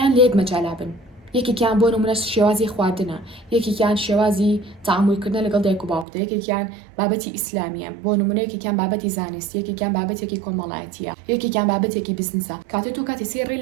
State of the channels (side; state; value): left; drops out; at 6.1 s